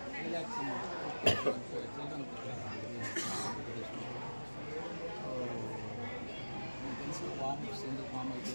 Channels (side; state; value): both; inverted; correlation -1.00